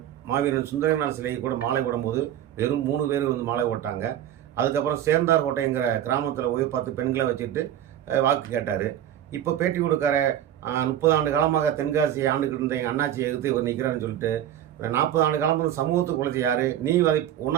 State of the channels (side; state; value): left; quieter; 11.2 dB